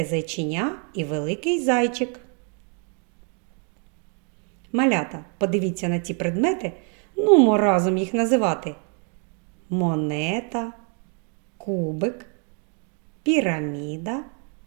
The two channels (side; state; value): left; quieter; 39.7 dB